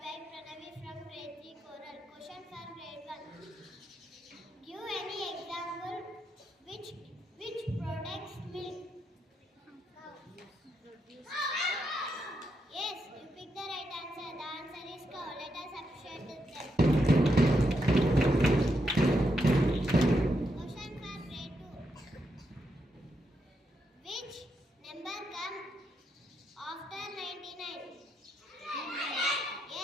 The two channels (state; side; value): normal; both; correlation 0.82